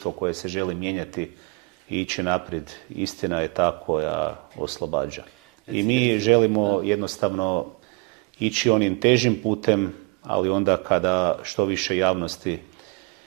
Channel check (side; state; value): left; quieter; 28.5 dB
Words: koje se želi mijenjati i ići naprijed, istina je ta koja oslobađa. I mi želimo jednostavno ići onim težim putem, ali onda kada što više javnosti